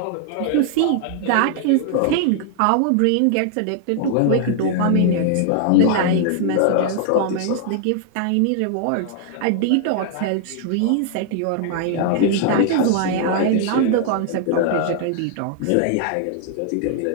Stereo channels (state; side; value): different; both; correlation 0.00